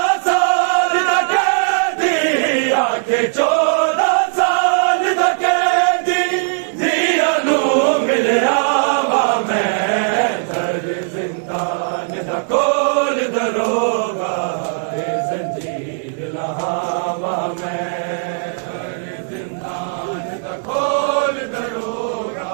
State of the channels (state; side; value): silent; left; digital silence